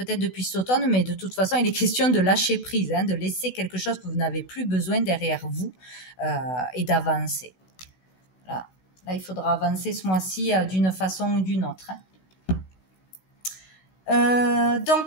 depuis cet automne, mais de toute façon, il est question de lâcher prise, hein, de laisser quelque chose que vous n'avez plus besoin derrière vous et d'avancer. Là, il faudra avancer ce mois-ci d'une façon ou d'une autre. Hein.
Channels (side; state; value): right; late; 16 ms